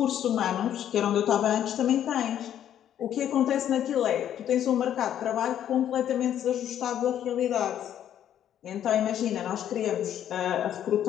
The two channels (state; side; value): quieter; right; 10.5 dB